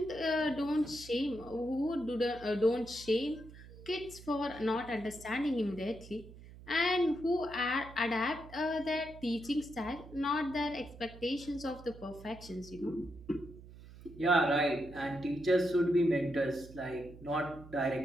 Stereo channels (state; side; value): noise; right; hum, 17 dB below the sound